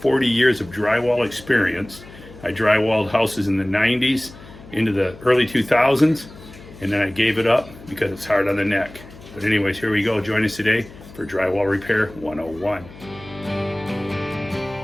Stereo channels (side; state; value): left; noise; hum, 19 dB below the sound